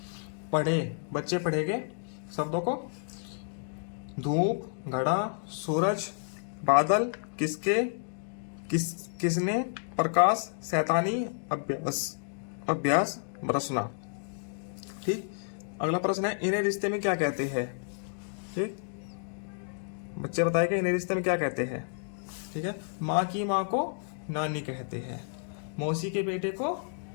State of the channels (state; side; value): silent; right; digital silence